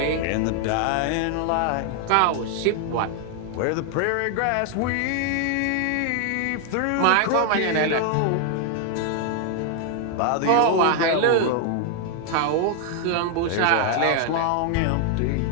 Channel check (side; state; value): both; different; correlation 0.00